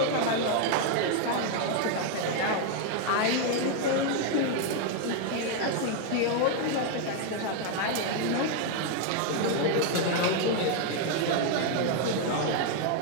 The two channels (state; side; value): different; both; correlation 0.00